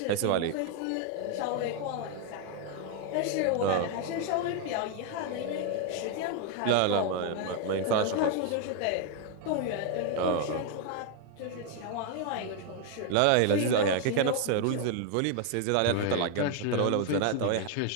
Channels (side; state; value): both; different; correlation 0.01